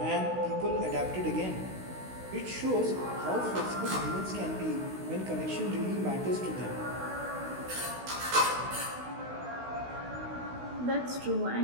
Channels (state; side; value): late; left; 16 ms